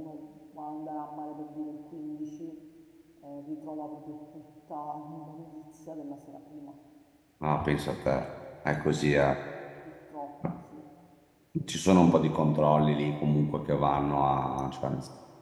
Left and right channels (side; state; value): both; identical; correlation 1.00